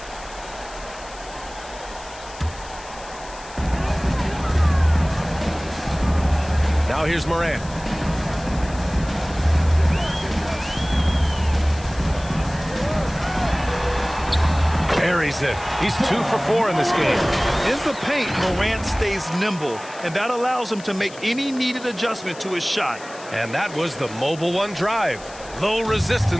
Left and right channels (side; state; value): left; noise; hiss, 18 dB below the sound